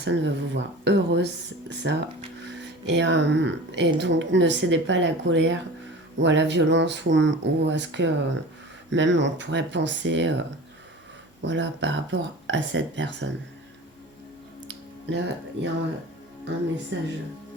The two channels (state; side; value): normal; both; correlation 0.36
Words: veut vous voir heureuse, ça. Et donc, ne cédez pas à la colère ou à la violence ou à ce que même on pourrait penser voilà, par rapport à cette personne. Là, il y a un message.